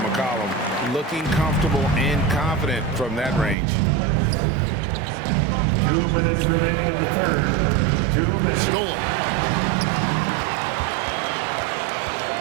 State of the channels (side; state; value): left; drops out; at 3.6 s